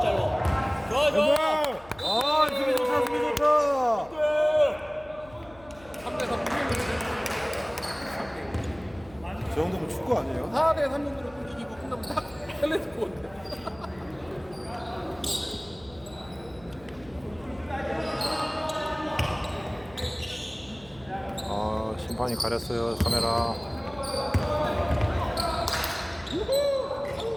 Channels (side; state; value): left; noise; hum, 23 dB below the sound